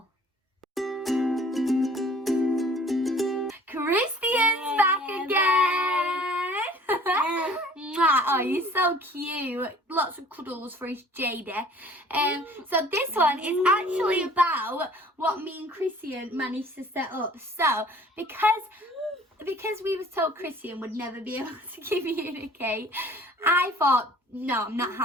Christian's back again. Oh, you're so cute. Lots of cuddles for his JD. So this one is actually about what me and Christian managed to set up. So because we was told Christian would never be able to communicate, I thought, no, I'm not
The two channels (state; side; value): normal; both; correlation 0.52